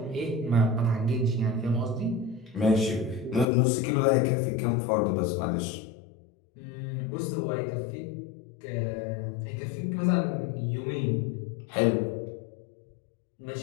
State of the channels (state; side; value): drops out; right; at 3.5 s